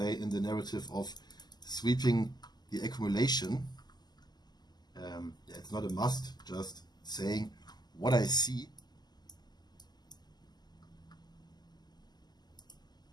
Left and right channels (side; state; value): right; late; 0.20 ms